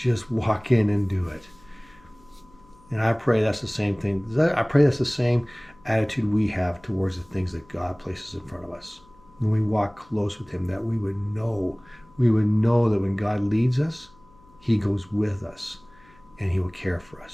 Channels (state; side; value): noise; left; hum, 28 dB below the sound